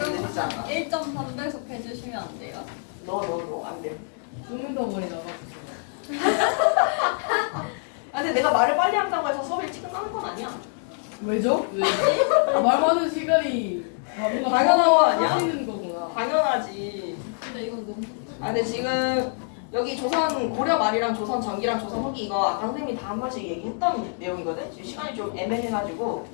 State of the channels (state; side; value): silent; right; 61 dB below the other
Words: 느리지 않아. 1.3배속 해주시면 안 돼요? no 안 돼. 숨은 덩어리 나가고 아 근데 내가 말을 빨리 한다고 해서 수업이 일찍 끝나는 건 아니야. 왜죠? 왜지? 말 많은 시간이 뭔가 당연한 거 아니야? 하시는 거구나. 당연하지. 근데 이건 너무 아 근데 지금 여기 조선 고려 말이랑 조선 전기랑 조선 후기 이거 아까 선생님이 다 한 번씩 얘기했던 내용이거든. 지금 시간이 좀 애매해가지고